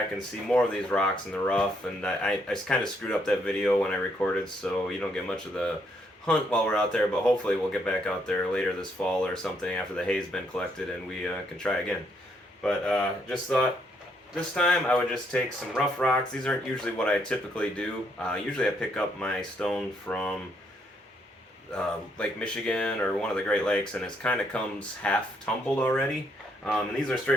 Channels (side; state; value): both; normal; correlation 0.73